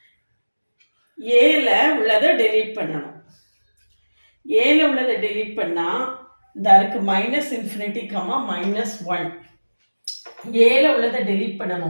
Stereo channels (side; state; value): both; inverted; correlation -1.00